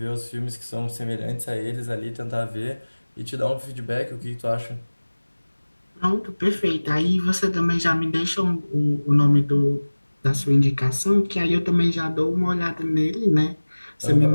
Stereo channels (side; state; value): both; inverted; correlation -1.00